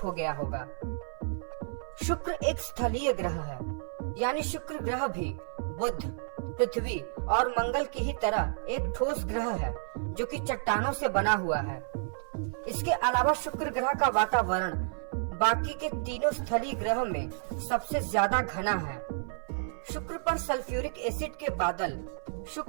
हो गया होगा। शुक्र एक स्थलीय ग्रह है, यानी शुक्र ग्रह भी बुध, पृथ्वी और मंगल की ही तरह एक ठोस ग्रह है जो कि चट्टानों से बना हुआ है। इसके अलावा शुक्र ग्रह का वातावरण बाकी के तीनों स्थलीय ग्रह में सबसे ज्यादा घना है। शुक्र पर सल्फ्यूरिक एसिड के बादल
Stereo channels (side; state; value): left; silent; 57 dB below the other